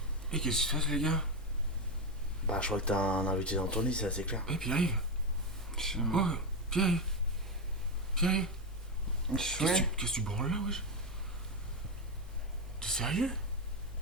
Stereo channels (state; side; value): normal; both; correlation 0.10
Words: Et qu'est-ce qui se passe, les gars? Bah, je crois que t'as un invité dans ton lit, c'est assez clair. Eh, Pierre-Yves. Oh, Pierre-Yves. Pierre-Yves. Qu'est-ce que tu branles là, wesh? T'es sérieux?